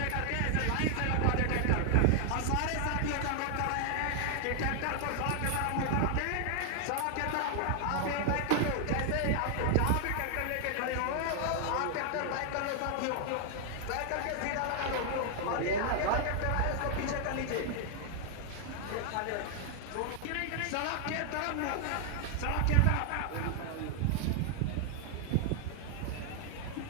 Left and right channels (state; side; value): different; both; correlation 0.00